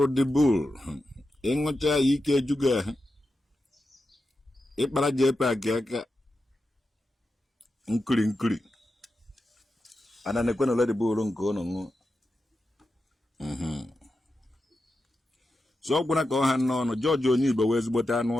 di bull. Ingota ike juga. Ipara jepa aka nkuri. Ana nekwena wala Ndigbo nko no. So kuna ko han no George onyi Igbo wezi bota anu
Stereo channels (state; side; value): normal; both; correlation 0.89